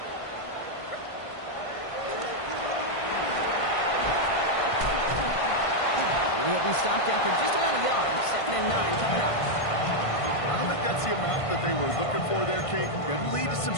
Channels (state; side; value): late; right; 1.5 ms